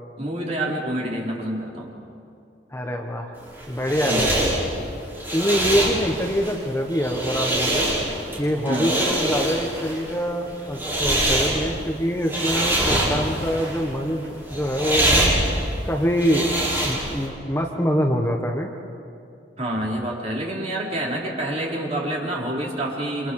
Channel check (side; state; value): both; normal; correlation 0.51